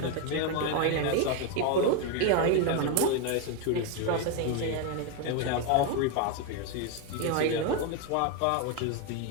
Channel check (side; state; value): both; different; correlation 0.01